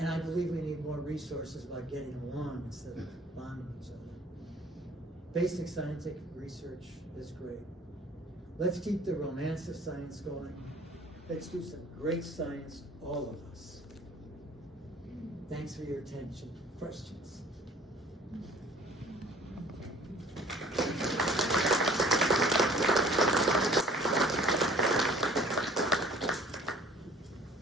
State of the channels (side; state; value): both; normal; correlation 0.52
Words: I believe we need more resources about getting along instead of bombing each other. Basic scientific research is great. Let's keep the romance of science going. Let's do some great science, all of us. Thanks for your attention. Questions?